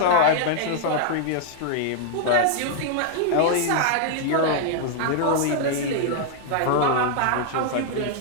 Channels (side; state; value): both; different; correlation 0.00